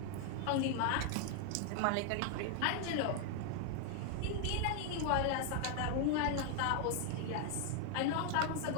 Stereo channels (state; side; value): different; both; correlation 0.00